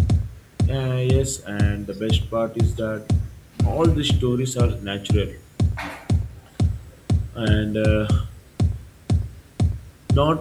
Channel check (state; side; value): identical; both; correlation 1.00